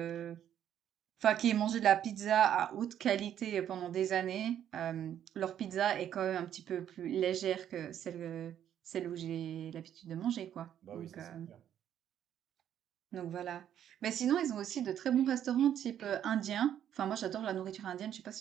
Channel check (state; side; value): quieter; left; 10.2 dB